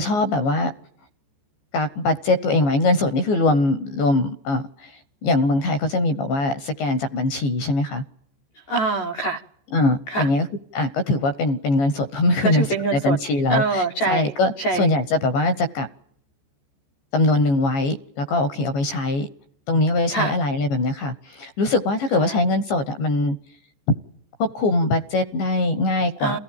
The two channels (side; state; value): right; late; 14 ms